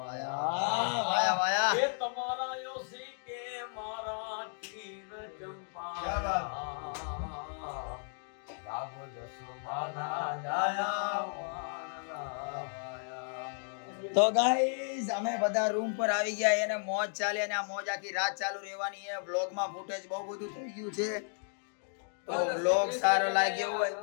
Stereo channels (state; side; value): silent; right; digital silence